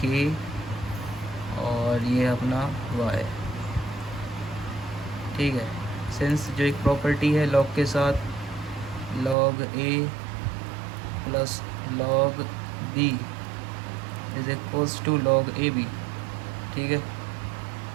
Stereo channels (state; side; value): drops out; left; at 9.3 s